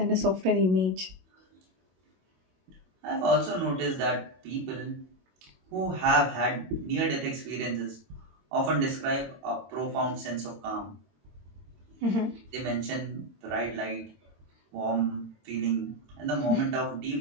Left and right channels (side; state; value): left; late; 22 ms